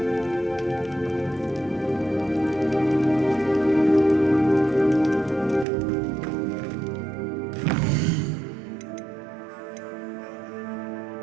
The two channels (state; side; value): drops out; left; at 5.7 s